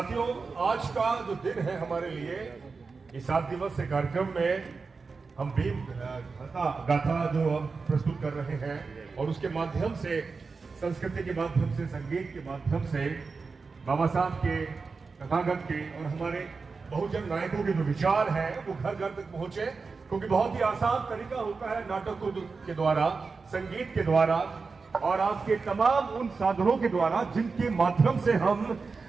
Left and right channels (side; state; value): left; quieter; 4.5 dB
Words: आज का जो दिन है हमारे लिए, इस 7 दिवसीय कार्यक्रम में हम भीम गाथा जो हम प्रस्तुत कर रहे हैं, और उसके माध्यम से, संस्कृति के माध्यम से, संगीत के माध्यम से बाबा साहब के, तथागत के और हमारे बहुजन नायकों के जो विचार है वो घर घर तक पहुंचे। क्योंकि बहुत ही आसान तरीका होता है नाटकों के द्वारा, संगीत के द्वारा और आपके तमाम उन साधनों के द्वारा जिनके माध्यम से हम